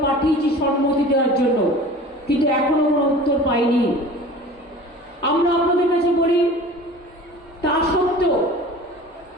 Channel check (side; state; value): both; normal; correlation 0.41